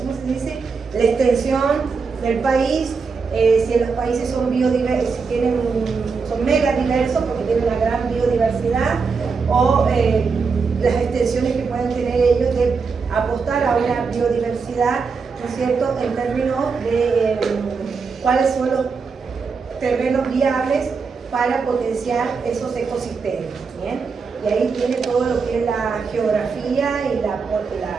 se dice? La extensión del país, si los países son biodiversos, si son mega diversos porque tienen una gran biodiversidad, o las extensiones que pueden tener ellos de apostar a una biodiversidad, ¿no es cierto?, en términos de cuáles son los terrenos viables para potenciar esos ecosistemas. ¿Bien? Y ahí tiene todo lo que es la geografía y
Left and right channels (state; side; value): quieter; left; 5.1 dB